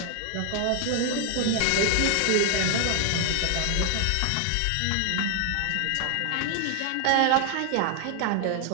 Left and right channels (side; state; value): both; different; correlation 0.00